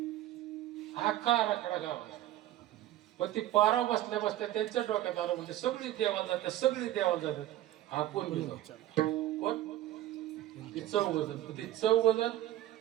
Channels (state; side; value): quieter; left; 14.0 dB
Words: आखा आराखडा गाव. पण ती पाराव बसल्या बसल्या त्यांच्या डोक्यात आलं म्हणजे सगळी देवाला जातात सगळी देवाला जातात. हा कोण कोण ती चौघजण. ती चौघजण